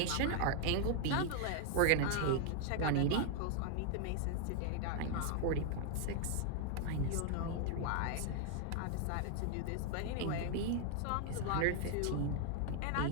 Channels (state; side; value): different; both; correlation 0.00